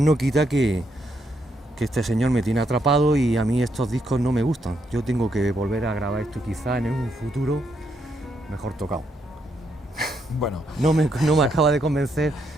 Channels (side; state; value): both; normal; correlation 0.77